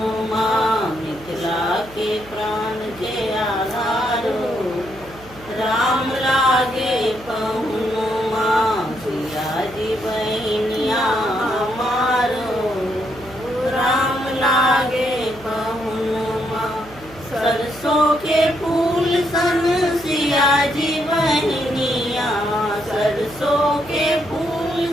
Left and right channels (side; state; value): right; noise; hum, 21 dB below the sound